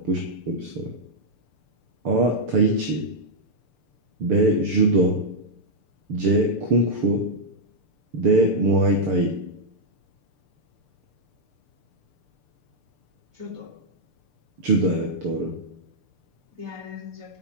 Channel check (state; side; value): late; left; 6.8 ms